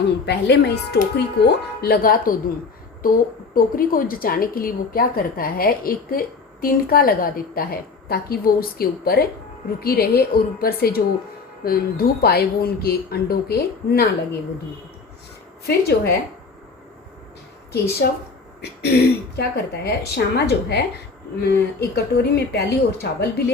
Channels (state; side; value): quieter; right; 4.5 dB